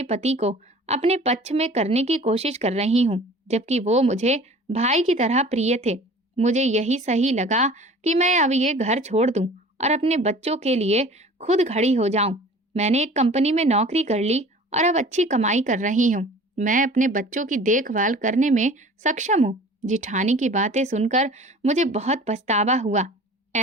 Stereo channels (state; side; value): normal; both; correlation 0.44